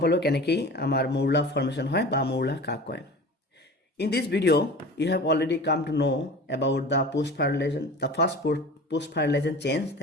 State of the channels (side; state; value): both; normal; correlation 0.37